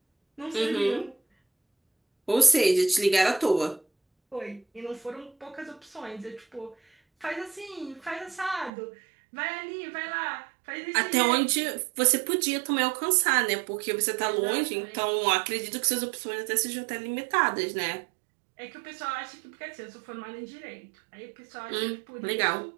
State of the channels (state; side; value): drops out; left; at 8.7 s